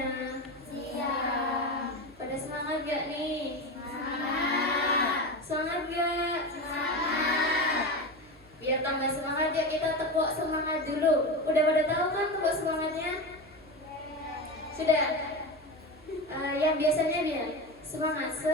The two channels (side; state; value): right; noise; hum, 26 dB below the sound